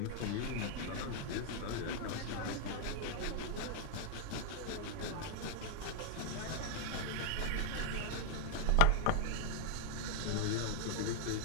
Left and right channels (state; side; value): different; both; correlation -0.01